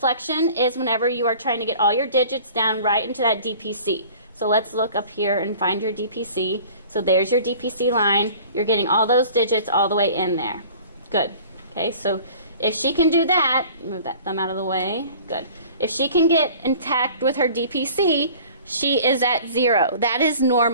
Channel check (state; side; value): inverted; both; correlation -0.47